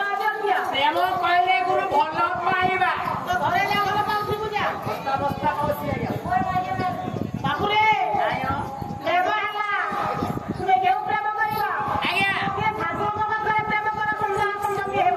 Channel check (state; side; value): identical; both; correlation 1.00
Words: ପ୍ରେମ କହିଲେ ଗୁରୁ ଭଲ ପାଇବା ଘରେ ଯା ଭଲ ପାଉଥିବୁ ଯା ଅବସ୍ଥା କହୁଛି ଆଜ୍ଞା ବାବୁରେ ପ୍ରେମ ହେଲା ତୁମେ କେଉଁ ପ୍ରେମ କରିବ ଆଜ୍ଞା ଠାକୁରଙ୍କ ପାଖରେ ପ୍ରେମ କର ସୁନ୍ଦର ସୁନ୍ଦର